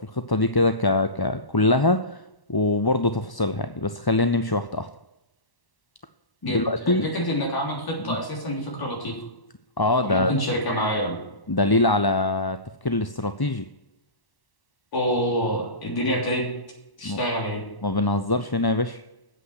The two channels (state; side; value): late; right; 1.1 ms